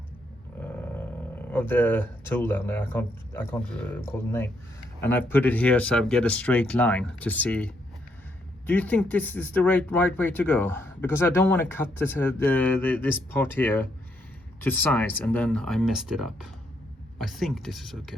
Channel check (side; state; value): both; normal; correlation 0.75